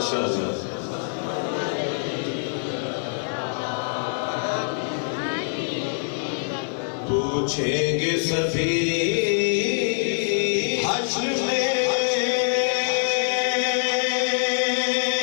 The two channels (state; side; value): silent; right; digital silence